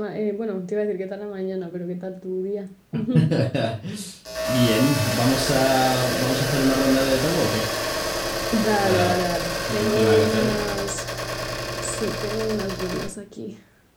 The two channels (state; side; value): identical; both; correlation 1.00